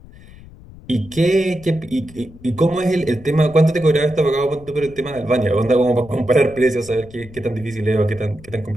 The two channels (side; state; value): left; noise; rumble, 20 dB below the sound